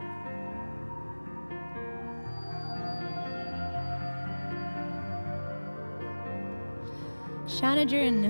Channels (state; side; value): inverted; both; correlation -1.00